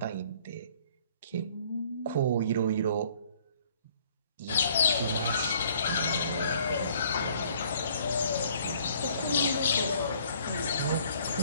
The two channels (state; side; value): inverted; both; correlation -0.59